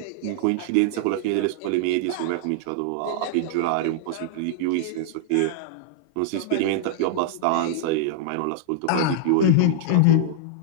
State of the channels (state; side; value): different; both; correlation -0.01